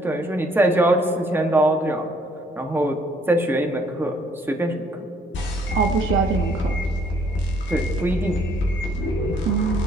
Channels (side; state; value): both; normal; correlation 0.64